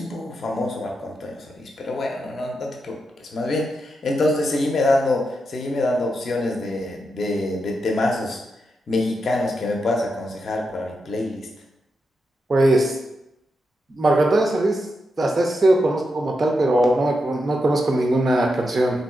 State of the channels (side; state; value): both; normal; correlation 0.86